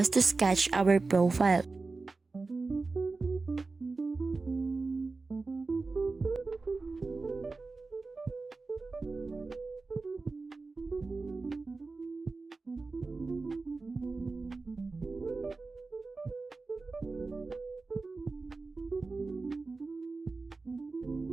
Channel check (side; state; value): left; quieter; 3.8 dB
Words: to sketch our profile.